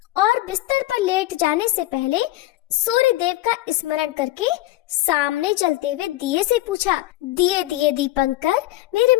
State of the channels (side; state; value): right; quieter; 16.7 dB